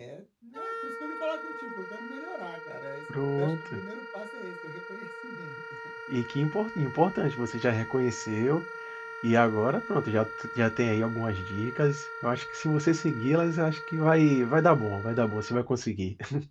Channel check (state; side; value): identical; both; correlation 1.00